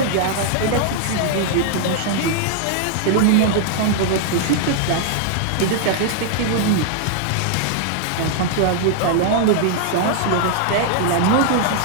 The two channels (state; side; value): different; both; correlation 0.00